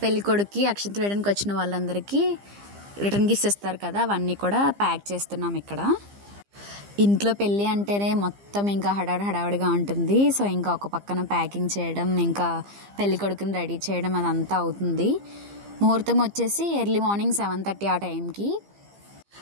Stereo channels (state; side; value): late; left; 15 ms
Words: పెళ్ళికొడుకుకి అక్షంతలు వేయడానికి వచ్చిన వాళ్ళందరికీ రిటర్న్ గిఫ్ట్స్ ఇస్తారు కదా, అవన్నీ కూడా ప్యాక్ చేస్తున్నాం ఇక్కడ. ఇంట్లో పెళ్ళి అంటేనే మొత్తం ఇంకా హడావిడిగా ఉంటుంది. సో ఇంకా ఒక పక్కన ప్యాకింగ్ చేయడం, ఇంకా పెళ్ళికొడుకుని రెడీ చేయడం అదంతా అవుతుంది. ముహూర్తం వచ్చేసి ఎర్లీ మార్నింగ్ 7:30 ఆ టైంకి.